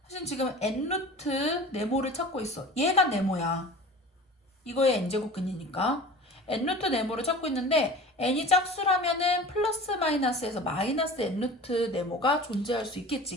사실 지금 n루트 네모를 찾고 있어. 얘가 네모야. 이거의 n제곱근이니까 n루트 네모를 찾고 있는데 n이 짝수라면은 플러스 마이너스에서 마이너스 n루트 네모가 존재할 수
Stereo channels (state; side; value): normal; both; correlation 0.39